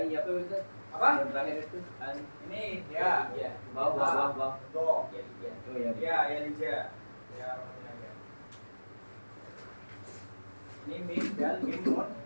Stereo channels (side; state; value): both; inverted; correlation -1.00